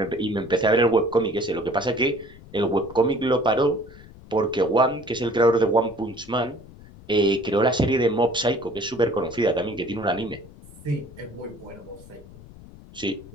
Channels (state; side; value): noise; left; rumble, 20 dB below the sound